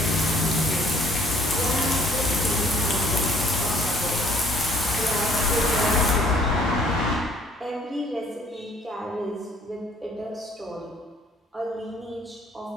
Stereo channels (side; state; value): both; normal; correlation 0.60